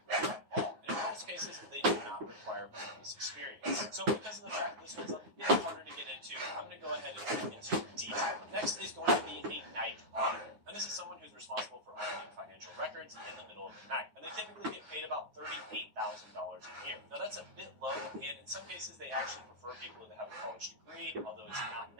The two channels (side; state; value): left; late; 9.6 ms